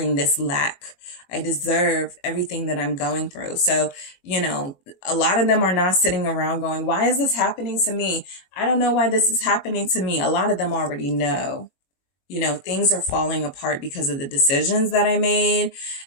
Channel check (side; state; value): right; late; 21 ms